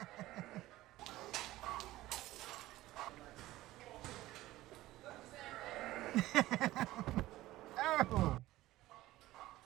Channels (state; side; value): quieter; left; 16.6 dB